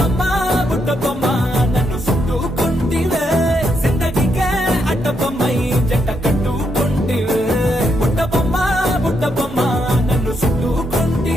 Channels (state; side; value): normal; both; correlation 0.79